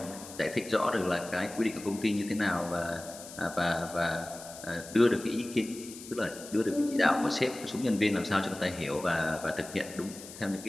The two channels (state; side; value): noise; left; hiss, 15 dB below the sound